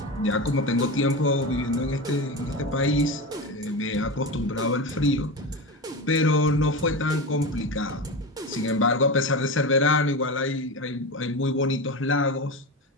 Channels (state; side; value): normal; both; correlation 0.22